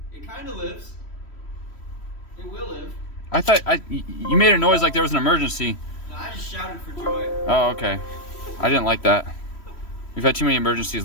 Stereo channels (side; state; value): right; late; 3.1 ms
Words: It kind of lives. It will live. I thought you made a noise like there was an emergency. No, I just shouted for joy. Oh, okay. I didn't like that. We've had too many emergencies